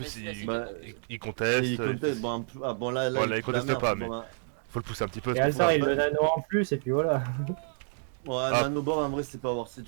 Mais il Bah, il conteste. Et il conteste, bon, bon là, Ouais, là, il fout la conteste merde, pas, bon, mais- bah. Faut le pousser un petit peu. Et c'est pour ça. Altar il le nano en plus et puis voilà. Ouais, Ah. Nanobor en vrai c'est pas worth it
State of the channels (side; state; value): left; silent; digital silence